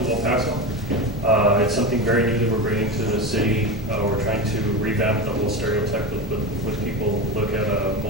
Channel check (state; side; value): normal; both; correlation 0.22